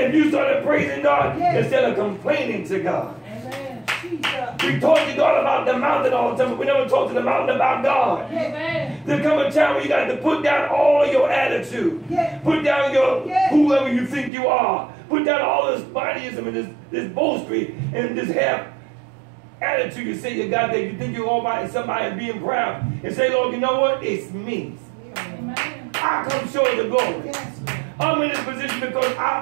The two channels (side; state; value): left; drops out; at 14.3 s